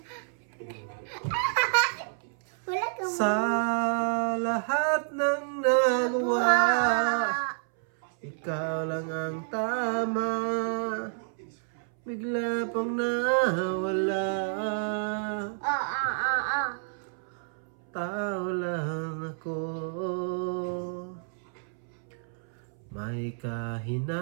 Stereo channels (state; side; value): silent; left; 58 dB below the other